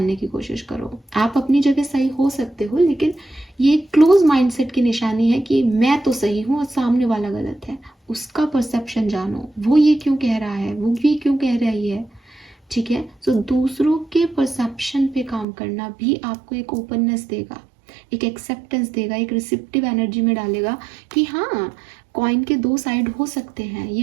की कोशिश करो। आप अपनी जगह सही हो सकते हो, लेकिन ये क्लोज माइंडसेट की निशानी है कि मैं तो सही हूँ और सामने वाला गलत है। उसका परसेप्शन जानो, वो ये क्यों कह रहा है, वो भी क्यों कह रही है। ठीक है, सो दूसरों के परसेप्शन पे काम करना भी आपको एक ओपननेस देगा, एक एक्सेप्टेंस देगा, एक रिसेप्टिव एनर्जी में डालेगा कि हाँ, कॉइन के दो साइड हो सकते हैं,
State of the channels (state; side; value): drops out; left; at 15.5 s